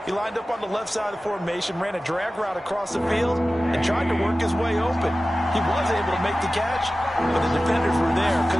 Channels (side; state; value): both; normal; correlation 0.96